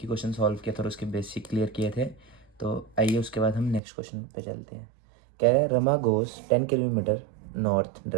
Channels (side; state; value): left; drops out; at 3.8 s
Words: ही क्वेश्चन सॉल्व किया था और उसके बेसिक क्लियर किए थे। तो आइए उसके बाद हम नेक्स्ट क्वेश्चन पे चलते हैं। कह रहा है Rama goes 10 kilometre north